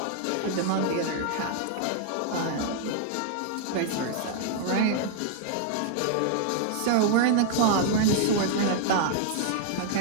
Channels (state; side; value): different; both; correlation 0.00